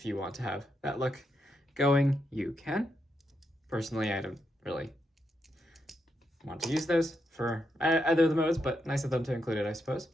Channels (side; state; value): both; normal; correlation 0.82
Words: you want to have that look going. You can. Personally, I don't really want to use those for either of the modes, but nice of them to include it, I suppose.